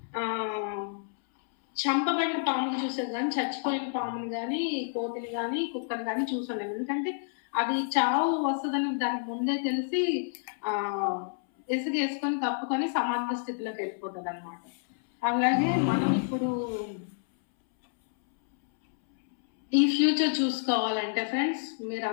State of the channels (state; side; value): silent; right; 59 dB below the other